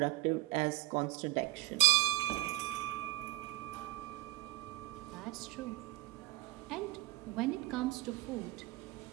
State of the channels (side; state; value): left; quieter; 18.4 dB